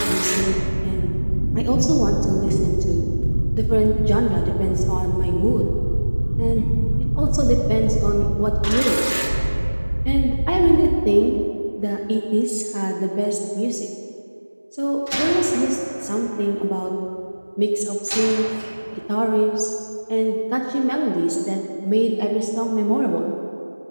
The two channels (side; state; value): both; inverted; correlation -1.00